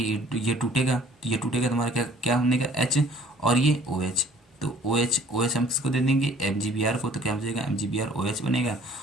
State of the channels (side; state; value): both; normal; correlation 0.55